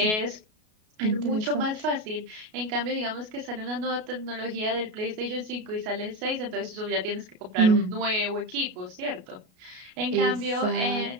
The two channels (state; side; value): late; left; 33 ms